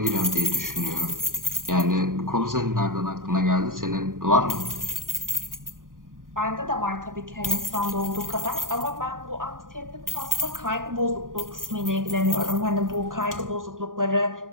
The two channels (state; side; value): late; left; 0.90 ms